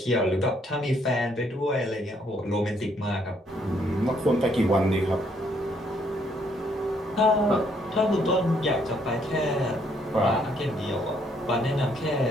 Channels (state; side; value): normal; both; correlation 0.69